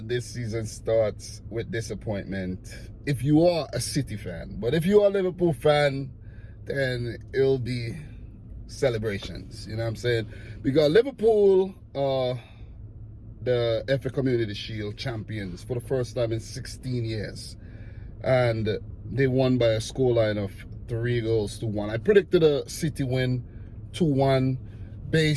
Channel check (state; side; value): identical; both; correlation 1.00